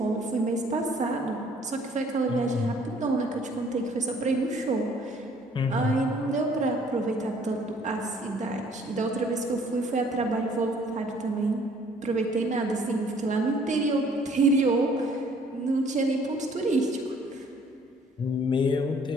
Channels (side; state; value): both; normal; correlation 0.59